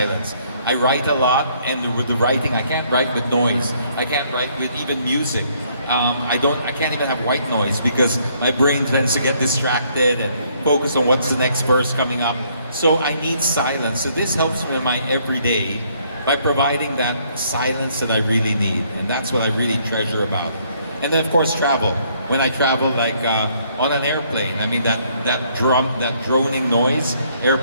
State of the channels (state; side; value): inverted; both; correlation -0.67